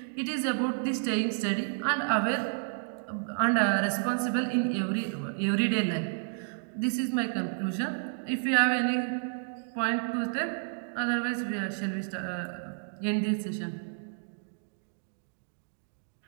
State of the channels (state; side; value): silent; left; digital silence